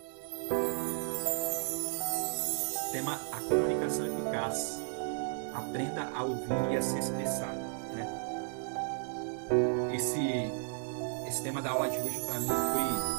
tema a comunicação eficaz. Aprenda a ouvir e a se expressar, né? Esse tema da aula de hoje para mim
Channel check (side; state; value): left; silent; 55 dB below the other